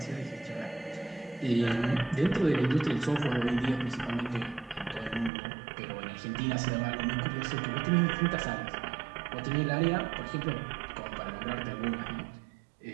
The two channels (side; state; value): left; drops out; at 5.3 s